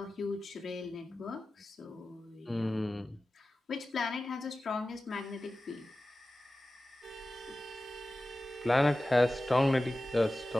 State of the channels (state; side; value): normal; both; correlation 0.95